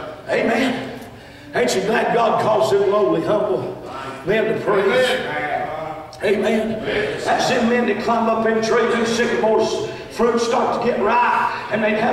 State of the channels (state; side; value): identical; both; correlation 1.00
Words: Amen. Ain't you glad God calls them lowly, humble men to praise? Amen. That's them men that climb up in trees and sycamores. Fruit start to get ripe, and they'd